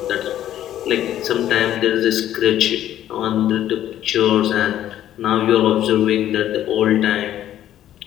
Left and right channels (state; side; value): quieter; right; 11.9 dB